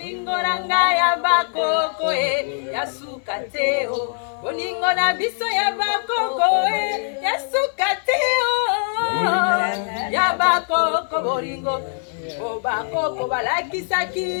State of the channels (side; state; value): right; silent; 61 dB below the other